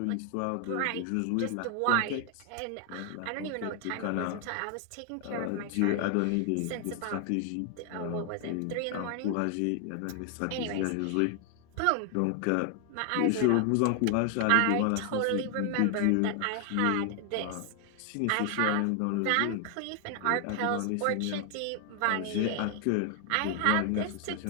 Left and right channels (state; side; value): different; both; correlation 0.00